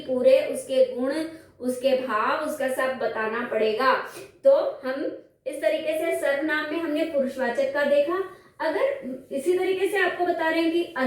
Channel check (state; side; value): identical; both; correlation 1.00